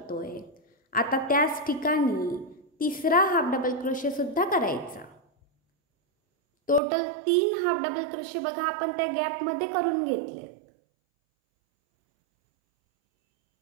आता त्याच ठिकाणी तिसरा हाफ डबल क्रोशे सुद्धा करायचा. टोटल 3 हाफ डबल क्रोशे बघा आपण त्या गॅपमध्ये करून घेतलेत.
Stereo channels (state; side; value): drops out; left; at 6.8 s